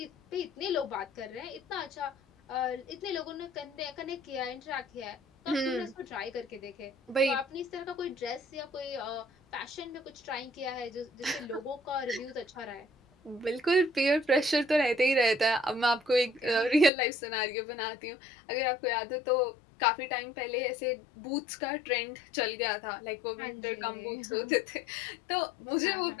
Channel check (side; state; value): right; drops out; at 16.9 s